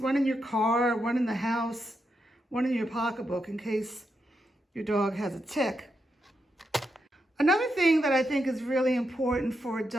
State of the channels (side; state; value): both; normal; correlation 0.84